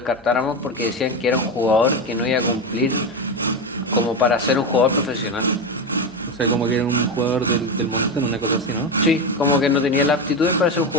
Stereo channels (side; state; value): both; normal; correlation 0.16